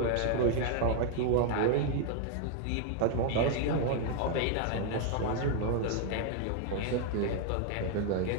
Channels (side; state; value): both; different; correlation 0.00